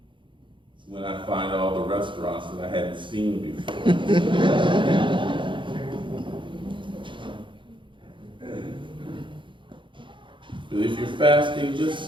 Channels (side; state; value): left; late; 0.24 ms